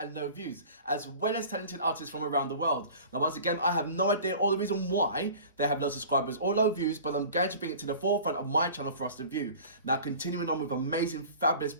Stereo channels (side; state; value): both; inverted; correlation -0.42